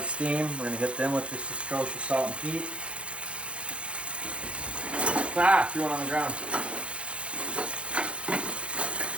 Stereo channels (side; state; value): left; late; 0.059 ms